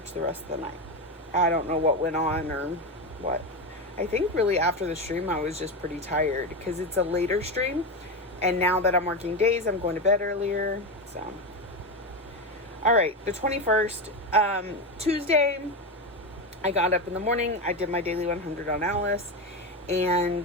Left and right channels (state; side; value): normal; both; correlation 0.15